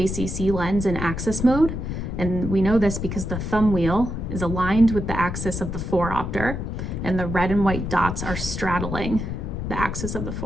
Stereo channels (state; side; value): noise; left; rumble, 4 dB below the sound